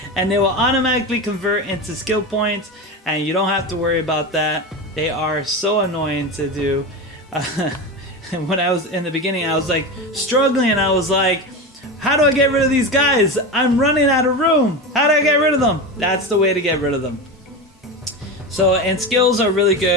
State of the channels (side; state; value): both; normal; correlation 0.22